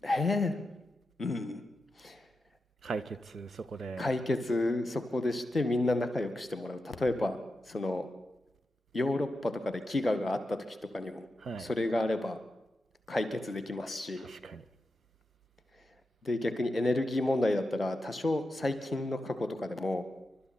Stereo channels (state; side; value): normal; both; correlation 0.89